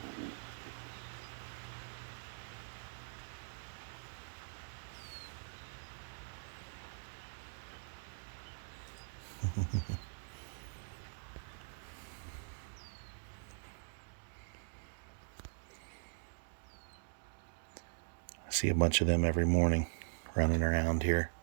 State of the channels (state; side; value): silent; left; digital silence